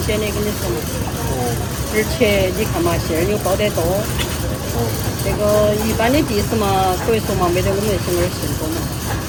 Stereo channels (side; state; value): both; identical; correlation 1.00